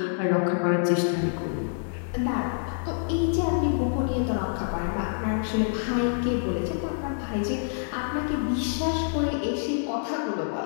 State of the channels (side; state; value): right; silent; digital silence